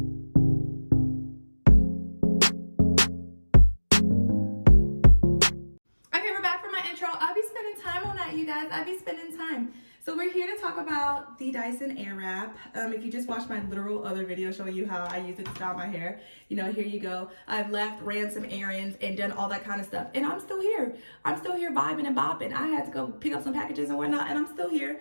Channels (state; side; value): inverted; both; correlation -1.00